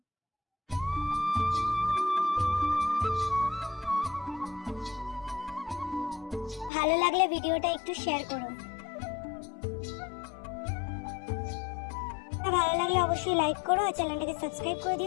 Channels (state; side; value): drops out; right; at 6.7 s